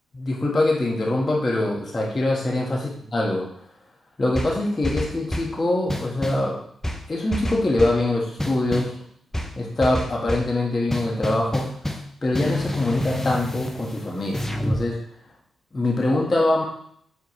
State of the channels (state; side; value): normal; both; correlation 0.92